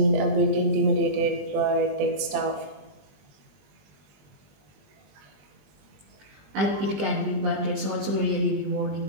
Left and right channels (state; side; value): late; left; 20 ms